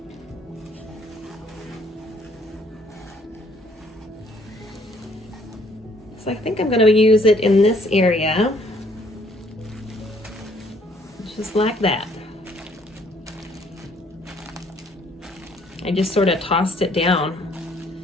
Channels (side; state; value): both; normal; correlation 0.63